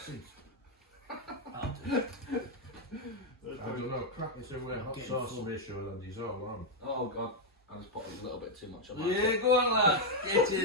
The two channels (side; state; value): both; normal; correlation 0.00